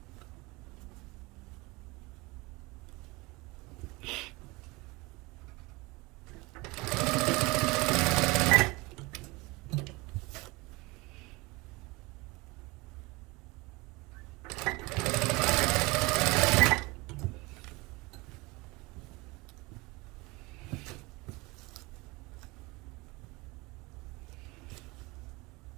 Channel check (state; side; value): quieter; left; 24.0 dB